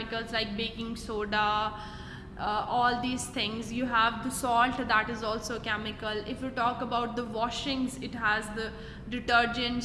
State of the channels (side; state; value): both; identical; correlation 1.00